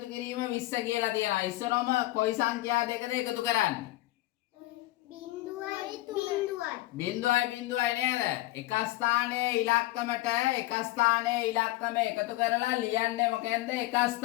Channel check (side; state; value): right; quieter; 18.1 dB